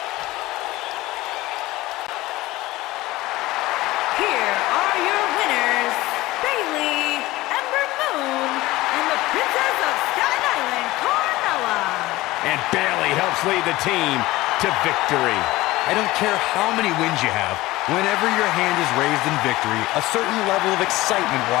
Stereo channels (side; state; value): right; quieter; 18.5 dB